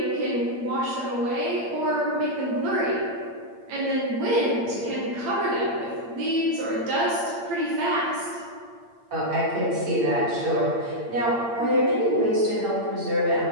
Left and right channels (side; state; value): left; late; 8.7 ms